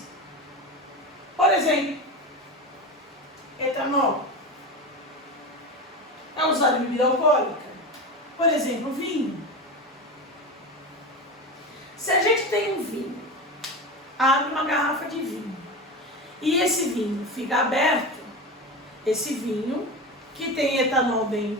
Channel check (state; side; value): normal; both; correlation 0.23